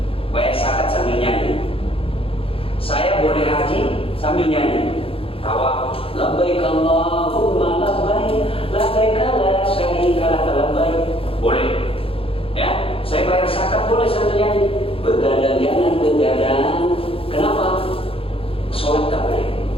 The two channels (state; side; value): late; right; 0.27 ms